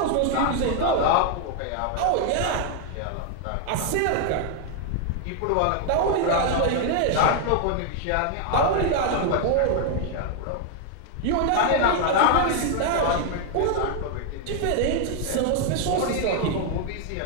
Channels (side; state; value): both; different; correlation 0.00